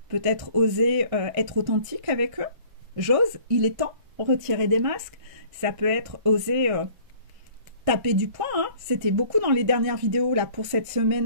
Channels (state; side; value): late; left; 1.6 ms